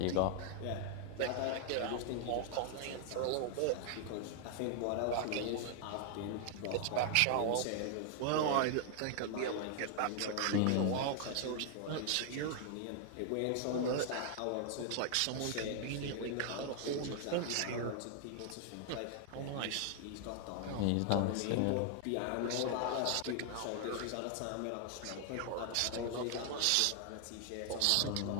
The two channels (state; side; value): different; both; correlation 0.00